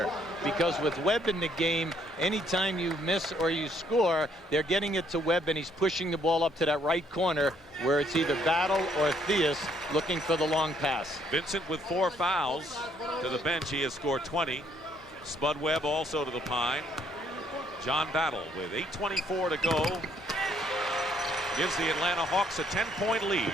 because with Webb in the game, anytime you miss or you score, they're getting it to Webb, and he's pushing the ball up to that right corner where it's either Battle or Theus looking for the long pass. Vincent with 4 fouls to the bench. He has scored 20. Spud Webb also to the pine. John Battle with 8:24 to go gives the Atlanta Hawks a 10-point lead.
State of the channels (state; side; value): normal; both; correlation 0.67